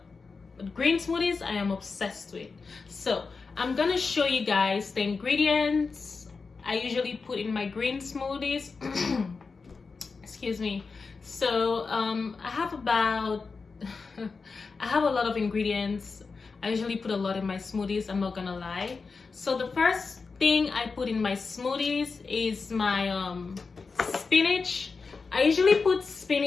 green smoothies I am obsessed with. So I'm gonna show you guys the ingredients I usually put in my green smoothies. Excuse me. So I have about I have a lot of ingredients. I usually put a lot in my smoothies, I'm not gonna lie. So the first thing I put in my smoothies is my spinach. I usually put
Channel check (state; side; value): quieter; right; 4.6 dB